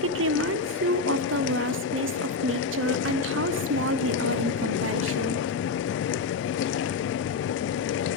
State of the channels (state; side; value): quieter; right; 4.2 dB